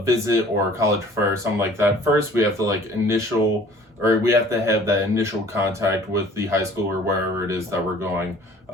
visit or a college fair or something like that, first we have to we have to have that initial contact with the high school or wherever it is that we're going.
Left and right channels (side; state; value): both; normal; correlation 0.51